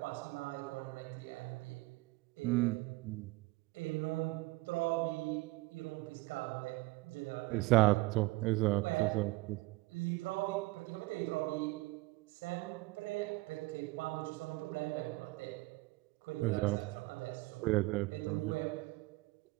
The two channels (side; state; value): left; quieter; 22.2 dB